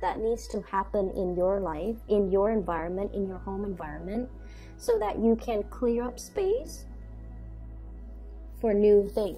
that needs to happen in your life, in your environment, in your home environment, so that you can clear up space for new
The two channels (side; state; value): both; identical; correlation 1.00